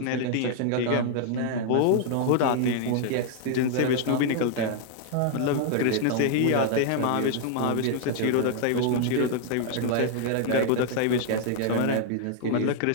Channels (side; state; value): both; different; correlation 0.00